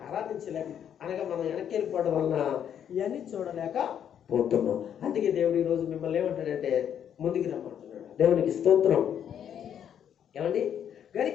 ఆరాధించలేక, అనగా మనం వెనక్కి వెళ్ళిపోవడం వలన ఇవన్నీ చూడలేకపోతున్నాం. అందుకే దేవుడు ఈరోజు మిమ్మల్ని ఏమంటాడంటే ముందుకు రమ్మంటున్నాడు. దేవునికి స్తోత్రం. ఏమండి,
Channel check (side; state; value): right; quieter; 9.1 dB